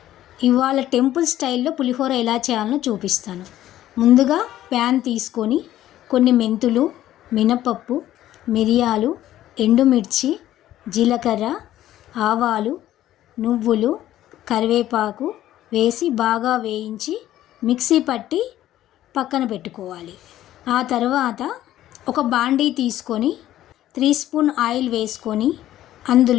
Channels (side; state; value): right; quieter; 13.3 dB